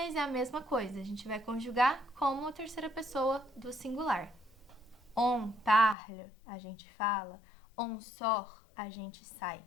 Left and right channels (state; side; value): drops out; right; at 6.0 s